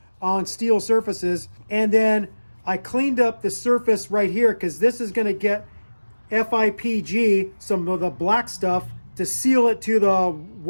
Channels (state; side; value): inverted; both; correlation -1.00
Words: on steel surfaces. And then I cleaned up the surface right here because this is going to get FIPG, some of the black stuff, to seal it to the